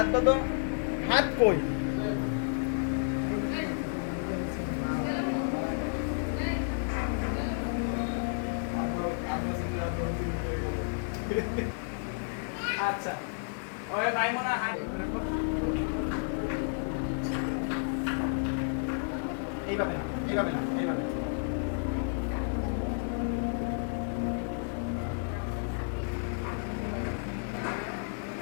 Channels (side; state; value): right; silent; digital silence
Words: বাঁধো। হাত কই? আচ্ছা ওই মাইমুনা এইভাবে না, এইভাবে না, এইভাবে।